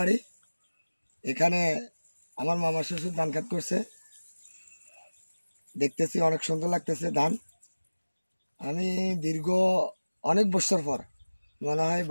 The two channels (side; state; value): both; inverted; correlation -1.00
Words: এখানে আমার মামা শ্বশুর ধান খেত করছে, দেখতেছি অনেক সুন্দর লাগতেছে ধান। আমি দীর্ঘ অনেক বছর পর, মনে হয়